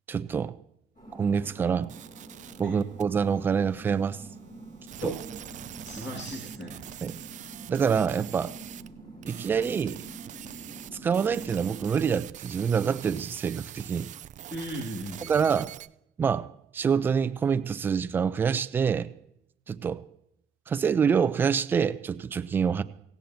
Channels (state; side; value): quieter; left; 6.3 dB